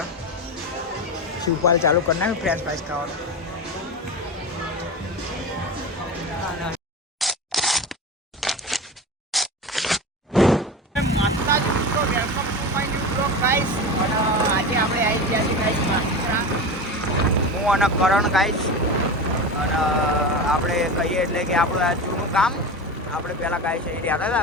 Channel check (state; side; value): normal; both; correlation 0.26